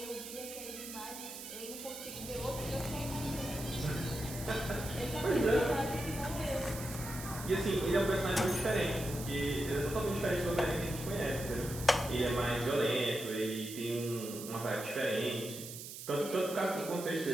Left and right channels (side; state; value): right; noise; hiss, 10 dB below the sound